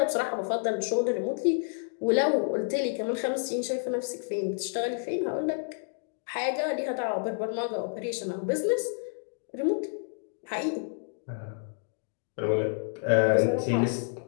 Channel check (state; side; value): silent; right; digital silence